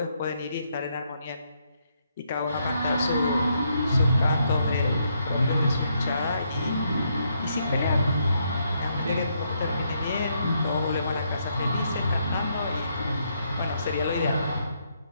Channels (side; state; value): both; inverted; correlation -0.75